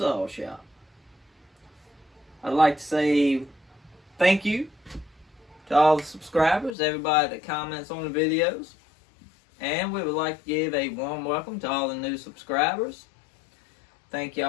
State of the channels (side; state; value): right; drops out; at 6.8 s